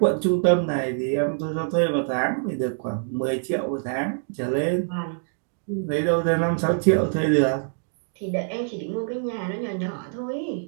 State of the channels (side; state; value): left; silent; digital silence